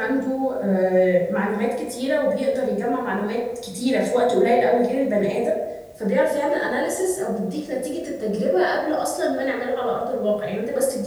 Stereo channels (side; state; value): both; identical; correlation 1.00